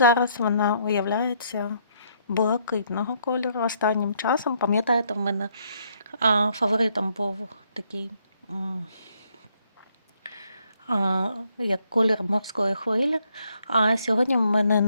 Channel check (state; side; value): inverted; both; correlation -0.71